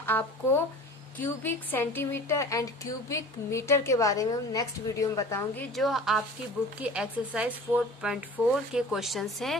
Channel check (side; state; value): both; normal; correlation 0.41